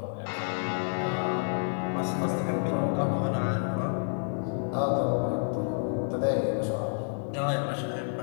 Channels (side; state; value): right; silent; digital silence